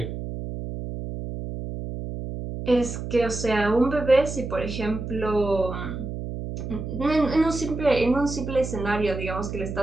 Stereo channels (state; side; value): noise; right; hum, 6 dB below the sound